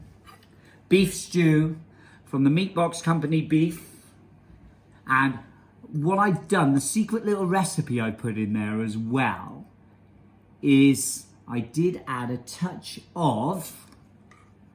beef stew from the Meat Box Company beef. And what I've done, the secret little recipe I put in there as well, is I did add a touch of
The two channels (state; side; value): identical; both; correlation 1.00